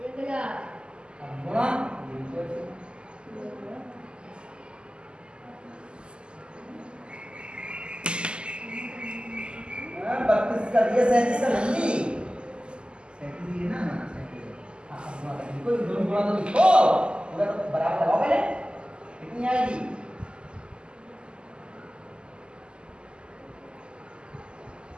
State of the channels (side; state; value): left; late; 0.049 ms